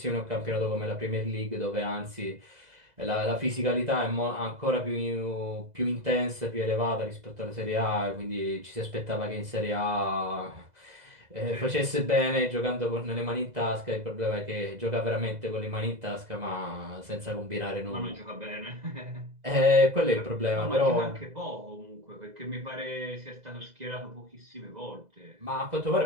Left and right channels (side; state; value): left; late; 2.0 ms